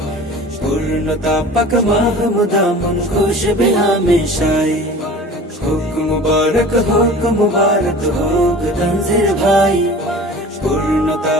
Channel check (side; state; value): both; normal; correlation 0.41